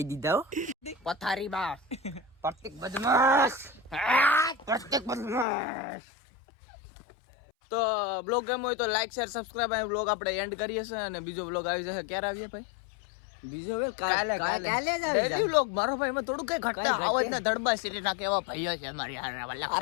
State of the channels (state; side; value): drops out; right; at 5.5 s